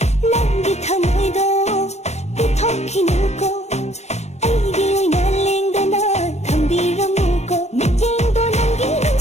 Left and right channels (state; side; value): late; right; 0.32 ms